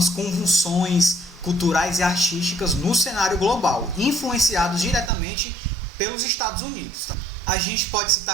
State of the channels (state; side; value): drops out; left; at 5.1 s